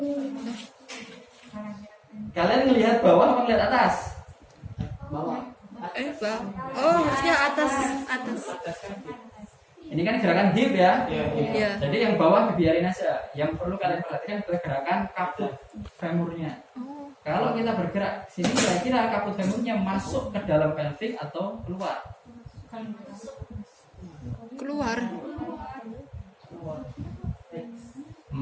Kalian ngelihat bawah apa ngelihat atas? Bang. Oh, harusnya atas. Ini kan gerakan hip ya. Iya. Jadi yang bawah dibiarin aja. Yang perlu kalian perhatikan adalah gerakan kaput femurnya. Oh, Kalau kita bergerak sini kira-kira kaput femurnya masuk ke dalam pelvic atau keluar? keluar.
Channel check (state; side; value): identical; both; correlation 1.00